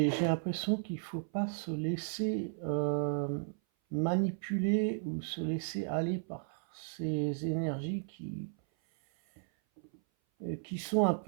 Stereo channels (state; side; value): silent; left; 55 dB below the other